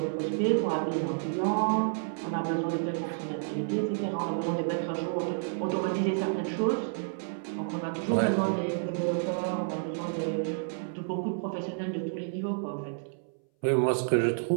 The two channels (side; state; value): left; silent; 58 dB below the other